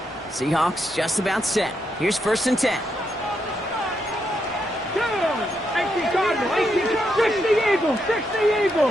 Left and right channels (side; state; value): both; normal; correlation 0.80